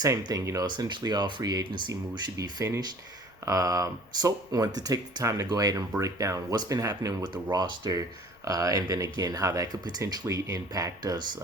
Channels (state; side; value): noise; left; rumble, 30 dB below the sound